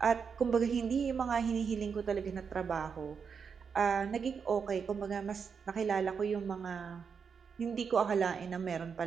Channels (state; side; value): quieter; left; 6.2 dB